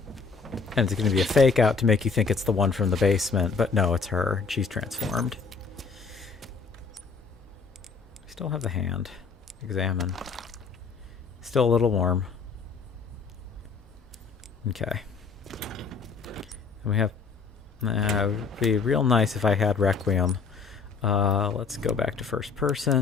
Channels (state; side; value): quieter; right; 5.0 dB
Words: And it's gonna be a fake out to make you think it's the one from the basement, but no, it's her. She's transformed. Still have the hand. Examine. Still a little warm. Okay. And we have... it would be real nice if I had Requiem. Let's go back to first